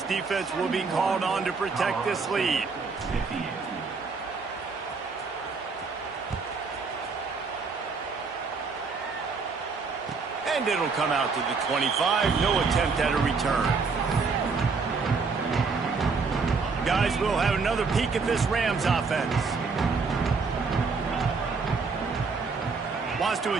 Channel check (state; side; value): quieter; left; 4.7 dB